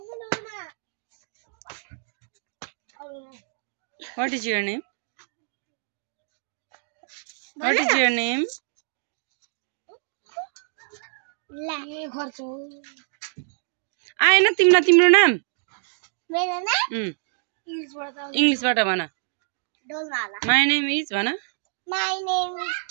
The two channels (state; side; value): silent; left; 61 dB below the other